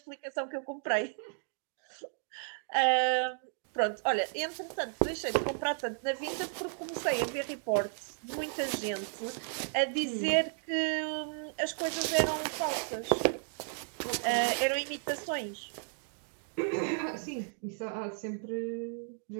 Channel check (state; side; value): silent; left; 55 dB below the other